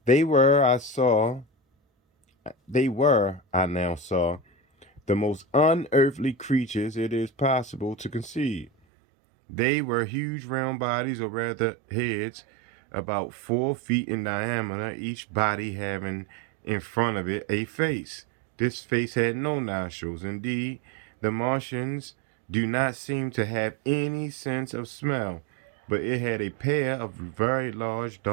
They were, I saw, I now saw, the most unearthly creatures it is possible to conceive. They were huge round bodies, or rather heads, about 4 feet in diameter, each body having in front of it a face. This face had no nostrils. Indeed, the Martians do not seem to have any sense of smell, but it had a pair of very large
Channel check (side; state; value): left; drops out; at 8.7 s